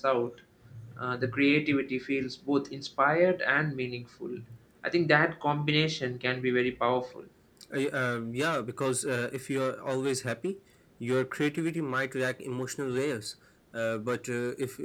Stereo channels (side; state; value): both; identical; correlation 1.00